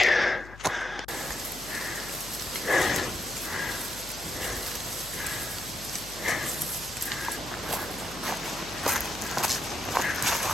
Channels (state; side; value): noise; left; hum, 16 dB below the sound